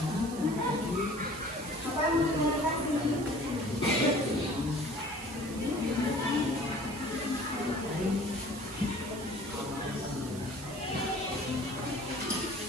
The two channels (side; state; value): right; noise; hiss, 14 dB below the sound